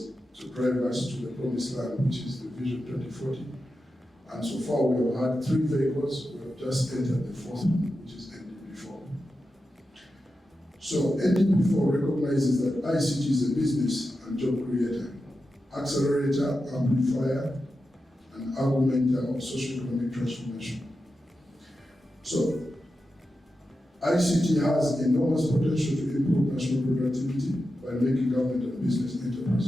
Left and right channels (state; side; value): normal; both; correlation 0.90